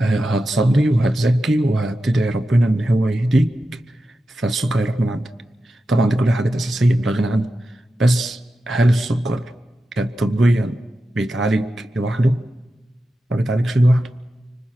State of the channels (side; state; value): both; normal; correlation 0.91